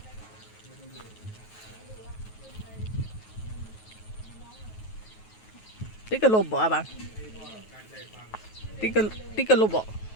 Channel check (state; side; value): late; right; 9.3 ms